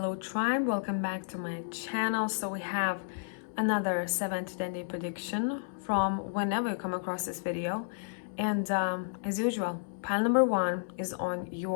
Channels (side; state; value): right; silent; 57 dB below the other